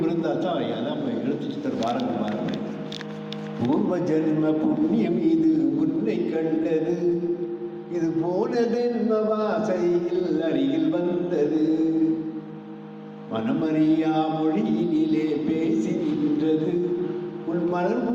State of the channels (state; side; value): identical; both; correlation 1.00